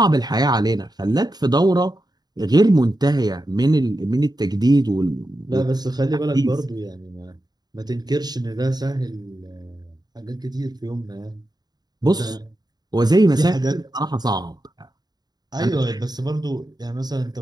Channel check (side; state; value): left; late; 0.20 ms